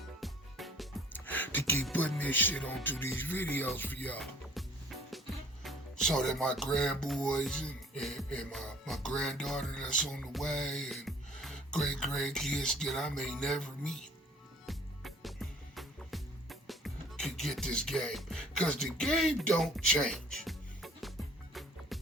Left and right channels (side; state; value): both; normal; correlation 0.53